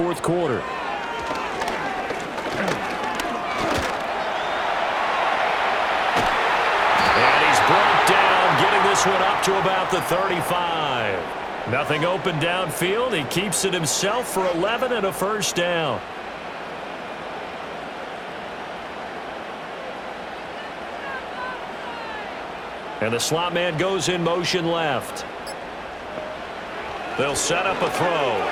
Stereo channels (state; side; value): identical; both; correlation 1.00